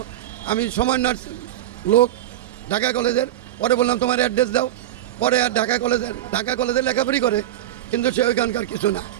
আমি সমন্বয়ের লোক ঢাকা কলেজের, পরে বললাম তোমার অ্যাড্রেস দাও, পরে আর ঢাকা কলেজে লেখাপড়ি করে, কিন্তু সে ওইখানকার কিছু না।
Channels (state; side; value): quieter; left; 13.0 dB